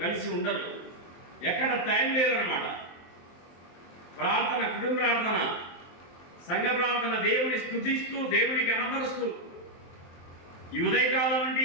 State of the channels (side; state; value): right; late; 23 ms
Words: ఉండరు. ఎక్కడ టైం లేదన్నమాట. ప్రార్థన, కుటుంబ ప్రార్థన, సంఘ ప్రార్థన, దేవుని స్తుతిస్తూ దేవుని కనపరుస్తూ ఈ ఉదయకాలం నుండి